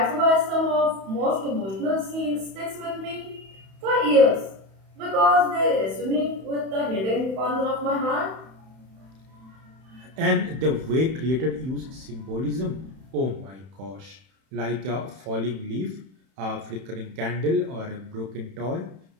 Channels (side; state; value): left; late; 31 ms